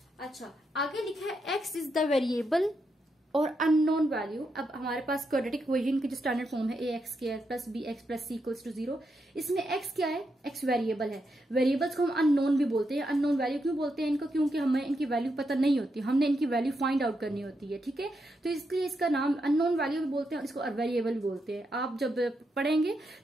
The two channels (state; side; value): normal; both; correlation 0.83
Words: अच्छा, आगे लिखा है x इज द वेरिएबल और अननोन वैल्यू। अब हमारे पास क्वाड्रेटिक इक्वेशन की जो स्टैंडर्ड फॉर्म है ax² plus bx plus c equals to 0। इसमें x क्या है? x वेरिएबल है। वेरिएबल्स को हम अननोन भी बोलते हैं। अननोन वैल्यू क्यों बोलते हैं इनको? क्योंकि हमें इनकी वैल्यू पता नहीं होती, हमने इनकी वैल्यू फाइंड आउट करनी होती है। ठीक है, तो इसलिए इसका नाम अननोन वैल्यू भी बोलते हैं और इसको वेरिएबल भी बोलते हैं। आप जब पढ़ेंगे